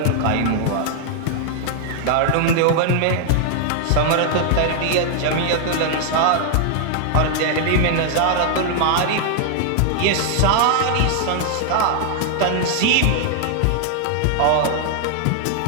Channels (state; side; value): different; both; correlation 0.00